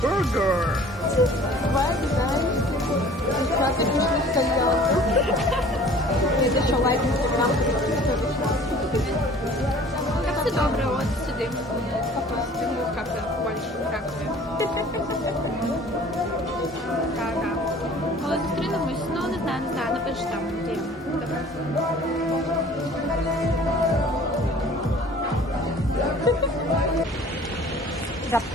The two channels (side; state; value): both; normal; correlation 0.49